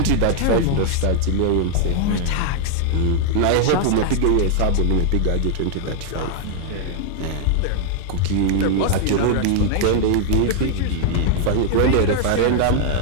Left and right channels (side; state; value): both; different; correlation 0.00